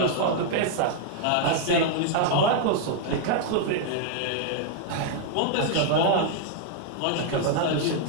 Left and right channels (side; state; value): both; different; correlation 0.00